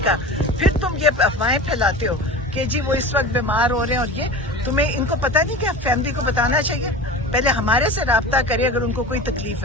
کا، پھر تم یہ افواہیں پھیلاتے ہو کہ جی وہ اس وقت بیمار ہو رہے ہیں. اور یہ تمہیں ان کو پتہ نہیں کہ فیملی کو بتانا چاہیے پہلے ہمارے سے رابطہ کرے اگر ان کو کوئی تکلیف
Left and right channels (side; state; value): both; normal; correlation 0.33